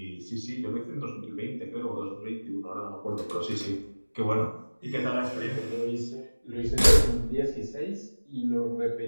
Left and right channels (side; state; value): both; inverted; correlation -1.00